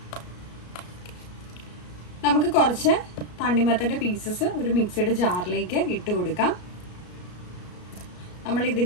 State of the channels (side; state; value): right; late; 33 ms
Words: നമുക്ക് കുറച്ച് തണ്ണിമത്തൻ്റെ പീസസ് ഒരു മിക്സിയുടെ ജാറിലേക്ക് ഇട്ട് കൊടുക്കാം. നമ്മൾ